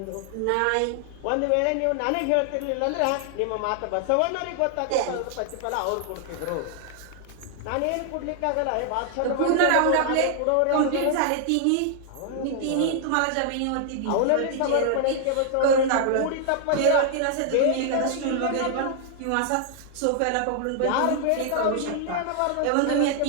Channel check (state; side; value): different; both; correlation 0.00